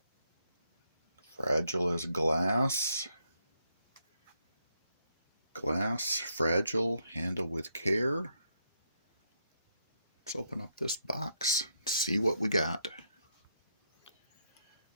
Fragile as glass. Glass, fragile, handle with care. Let's open up this box, see what we got.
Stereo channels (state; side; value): inverted; both; correlation -0.77